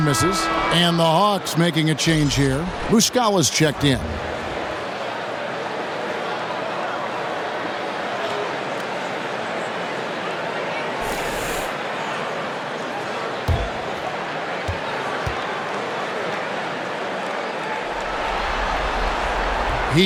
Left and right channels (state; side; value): identical; both; correlation 1.00